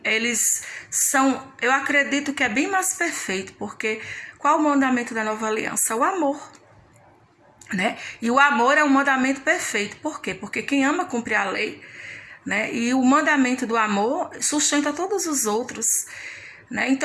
são, eu acredito que é bem mais perfeito, porque qual o mandamento da nova aliança? O amor. E o amor é um mandamento perfeito. Por quê? Porque quem ama cumpre a lei. E o mandamento do amor sustenta todos os outros.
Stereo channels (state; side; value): identical; both; correlation 1.00